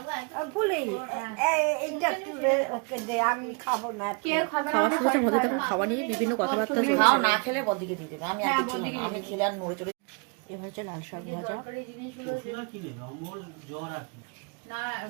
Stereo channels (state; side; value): quieter; left; 33.2 dB